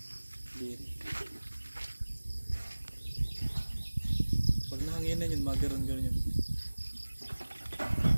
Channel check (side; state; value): both; inverted; correlation -1.00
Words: Diri. Pag nahanginan yun, magaron-garon yun.